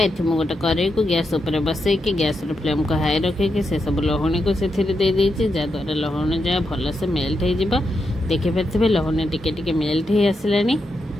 मुझे गोटे कड़े को गैस उपर बसई कि गैस फ्लेम को हाई रखिकी से सब लहुणी को से जहाद्वारा लहुणी जहाँ भल से मेल्ट हो। देखिपे लहुणी टिके मेल्ट हो आसला।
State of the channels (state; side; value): normal; both; correlation 0.84